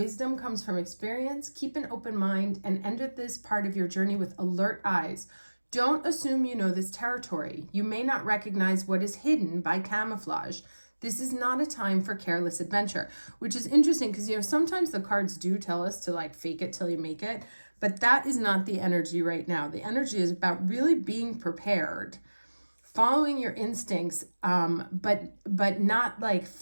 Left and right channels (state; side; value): inverted; both; correlation -1.00